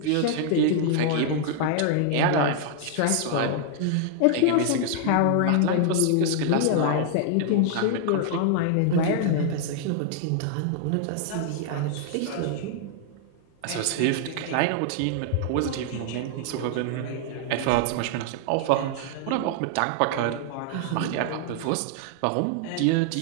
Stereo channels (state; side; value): different; both; correlation 0.00